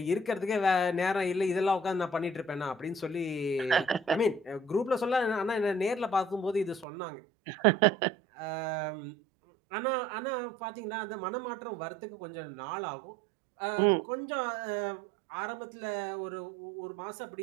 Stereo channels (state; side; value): drops out; left; at 6.9 s